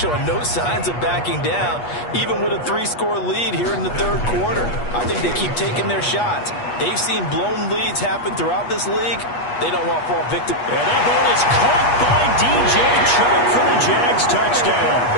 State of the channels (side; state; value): right; late; 8.3 ms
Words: no signs of backing down, even with a 3-score lead here in the third quarter. I think they keep taking their shots. They've seen blown leads happen throughout this league. They don't want to fall victim. And that ball is caught by DJ Chark for the Jags touchdown.